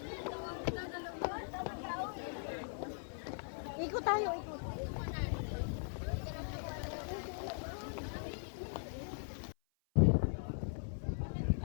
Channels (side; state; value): right; silent; 51 dB below the other